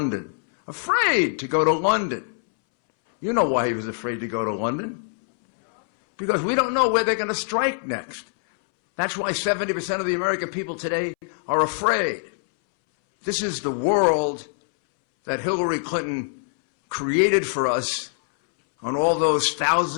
Afraid to go to London. You know why he was afraid to go to London? Because we don't know where they're going to strike next. That's why 70% of the American people today are afraid. This is the world that Hillary Clinton created for us on all those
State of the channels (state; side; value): silent; right; 63 dB below the other